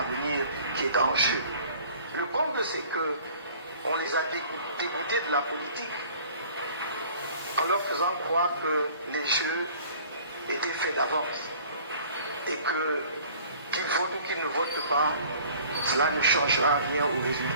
qui est en jeu. Le comble, c'est que on les a dégoûtés de la politique en leur faisant croire que les jeux étaient faits d'avance et que qu'ils votent ou qu'ils ne votent pas, cela ne changera rien au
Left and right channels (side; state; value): both; inverted; correlation -0.50